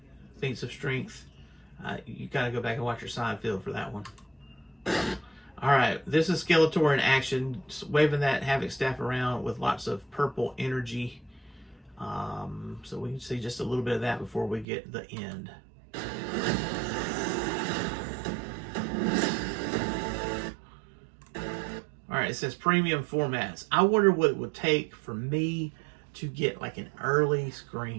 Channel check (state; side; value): drops out; left; at 14.7 s